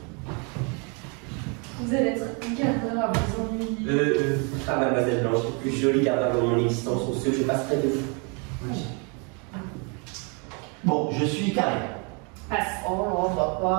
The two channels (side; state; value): left; quieter; 34.6 dB